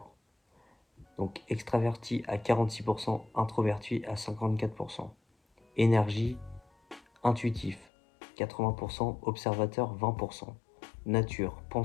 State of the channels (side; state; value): right; drops out; at 7.9 s